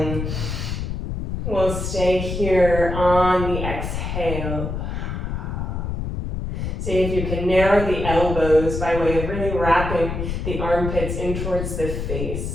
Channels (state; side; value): noise; left; rumble, 4 dB below the sound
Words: We'll stay here on the exhale. See if you can narrow the elbows by way of really wrapping the armpits in towards the